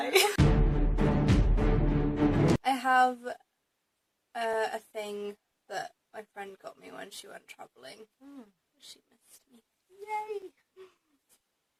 I have a thing that my friend got me when she went travelling. She missed me. Yay!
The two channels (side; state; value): both; identical; correlation 1.00